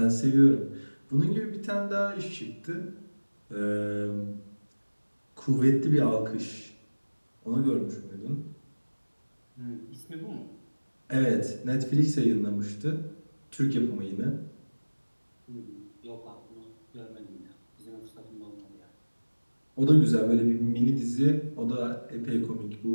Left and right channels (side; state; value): both; inverted; correlation -1.00